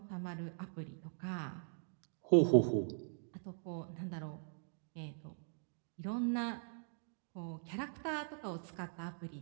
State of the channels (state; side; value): silent; left; digital silence